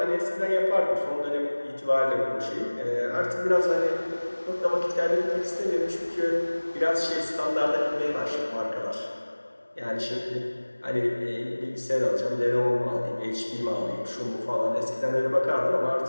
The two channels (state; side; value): inverted; both; correlation -1.00